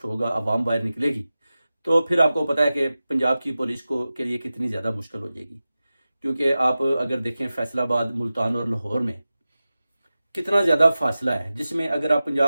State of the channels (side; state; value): both; inverted; correlation -0.95